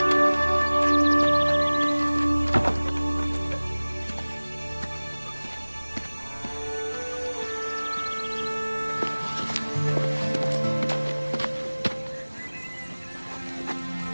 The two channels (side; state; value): both; inverted; correlation -1.00